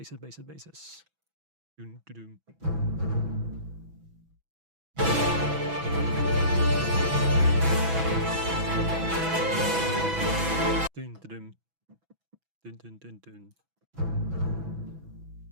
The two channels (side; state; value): left; late; 6.1 ms